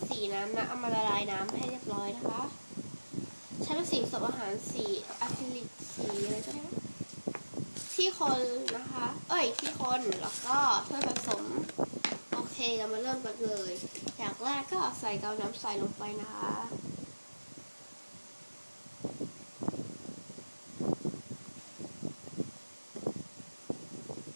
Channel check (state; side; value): inverted; both; correlation -1.00